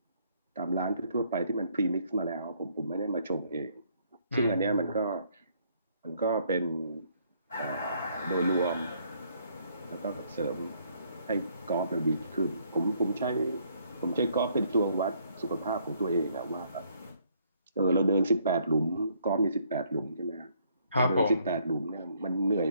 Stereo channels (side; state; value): both; inverted; correlation -0.67